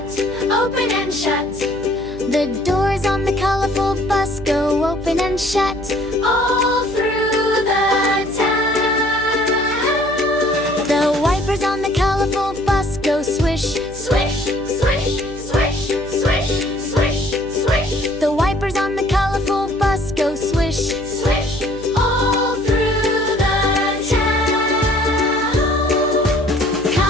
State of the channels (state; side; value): noise; right; hum, 14 dB below the sound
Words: open and shut. The doors on the colorful bus go open and shut all through the town. The wipers on the colorful bus go swish, swish, swish, swish, swish, swish, swish. The wipers on the colorful bus go swish, swish, all through the town.